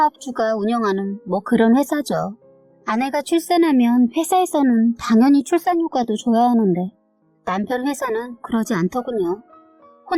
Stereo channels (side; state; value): both; identical; correlation 1.00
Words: 운영하는 뭐 그런 회사죠. 아내가 출산하면 회사에서는 당연히 출산휴가도 줘야 하는데 남편 회사는 그러지 않더군요.